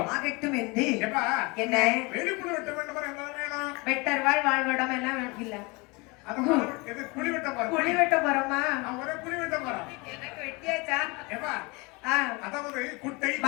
ஆகட்டும் என்று எப்பா என்ன வேலிக்குள்ள வெட்ட வேண்டும் என்ன வேணும்? வெட்டர்வாள் வாழ்வடம் எல்லாம் இல்ல. குழி வெட்ட போறோமா? குழி வெட்ட போறோம். எனக்கு வெட்டியாச்சா? எப்பா அதாவது குட்டை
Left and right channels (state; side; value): quieter; right; 26.8 dB